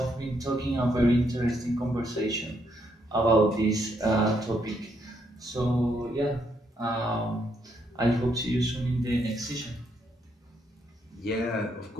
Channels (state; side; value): normal; both; correlation 0.75